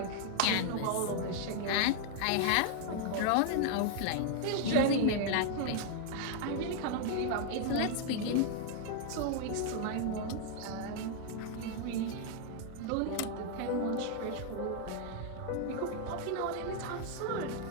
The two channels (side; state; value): both; different; correlation 0.00